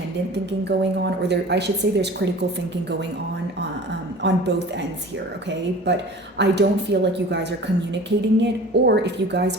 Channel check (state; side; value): normal; both; correlation 0.42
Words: thinking going on, or I should say there's critical thinking going on both ends here, okay? But I don't feel like you guys are communicating it, or if you guys